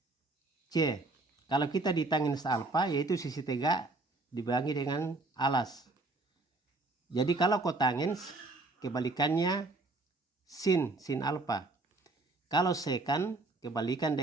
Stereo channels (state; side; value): quieter; left; 3.1 dB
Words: C. Kalau kita di tangens alfa yaitu sisi tegak dibagi dengan alas. Jadi kalau kotangens kebalikannya sin alfa. Kalau sekan kebalikan